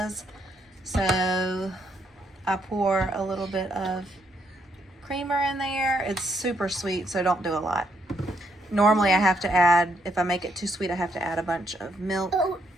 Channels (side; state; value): both; normal; correlation 0.74